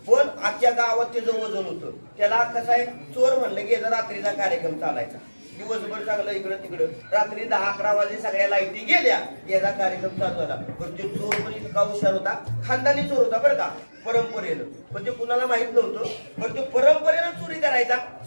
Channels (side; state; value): both; inverted; correlation -1.00